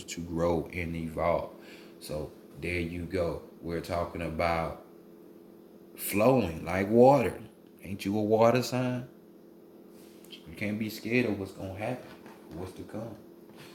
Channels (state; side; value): identical; both; correlation 1.00